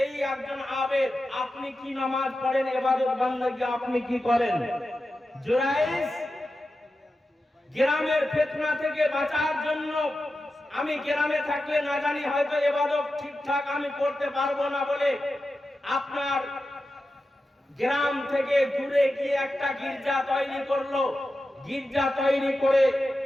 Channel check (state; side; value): normal; both; correlation 0.91